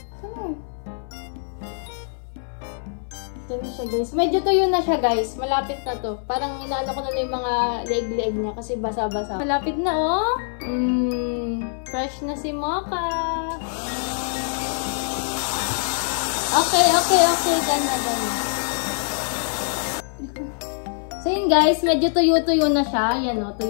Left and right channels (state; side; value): silent; right; 59 dB below the other